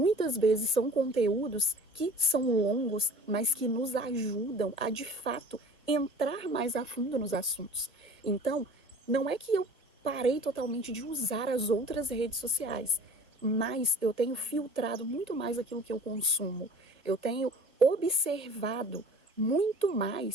vezes são conteúdos que são longos, mas que nos ajudam a, de fato, entrar mais a fundo nos assuntos. Então, não é que eu parei totalmente de usar as outras redes sociais, mas eu tenho filtrado muito mais aquilo que eu consumo. Eu tenho observado muito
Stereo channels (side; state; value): both; normal; correlation 0.46